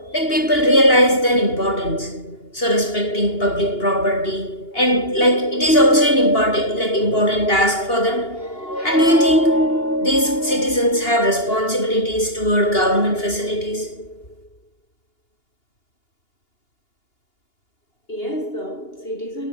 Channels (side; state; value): right; late; 2.8 ms